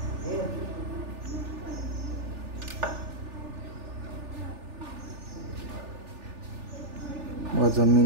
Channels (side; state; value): left; late; 3.4 ms